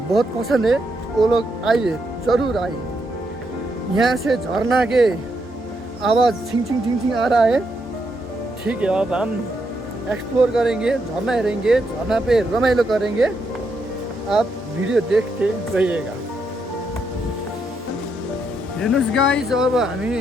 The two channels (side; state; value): both; normal; correlation 0.79